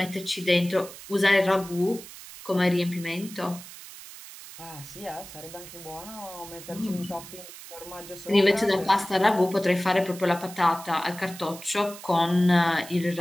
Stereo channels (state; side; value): noise; right; hiss, 15 dB below the sound